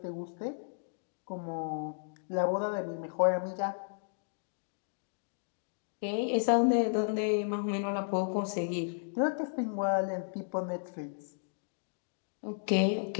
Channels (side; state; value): right; silent; digital silence